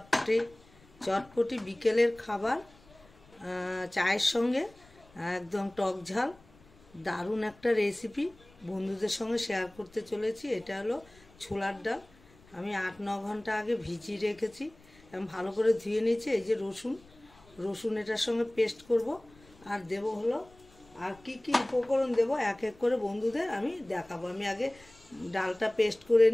চটপটি বিকেলের খাবার চায়ের সঙ্গে একদম টক ঝাল দারুণ একটা রেসিপি বন্ধুদের সঙ্গে শেয়ার করতে চলেছি। এটা হলো ছোলার ডাল। আমি 8-9 ঘন্টা আগে ভিজিয়ে রেখেছি এবং ভালো করে ধুয়ে নিয়েছি। এই যে রসুন এটার সঙ্গে পেস্ট করব আর দেব হলো আর কি কি উপকরণ দেব এক এক করে বন্ধুদের আমি দেখাবো। আমি আগে ডালটা পেস্ট করে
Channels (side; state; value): left; noise; rumble, 27 dB below the sound